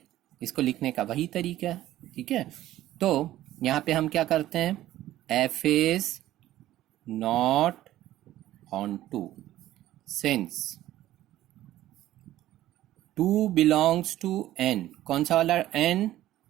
इसको लिखने का वही तरीका है. ठीक है, तो यहाँ पे हम क्या करते हैं? f is not onto since 2 belongs to n. कौन सा वाला n?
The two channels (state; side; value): quieter; left; 14.2 dB